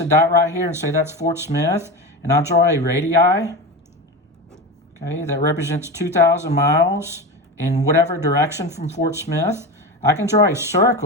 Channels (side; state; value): both; normal; correlation 0.24